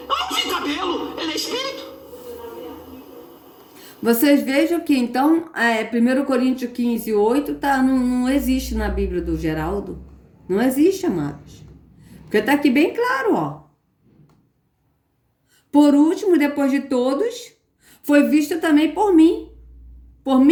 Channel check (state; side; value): identical; both; correlation 1.00